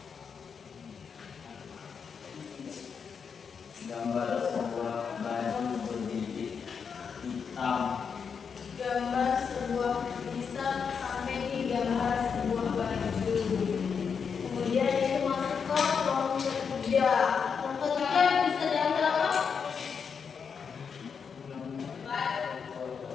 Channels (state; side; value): quieter; right; 6.3 dB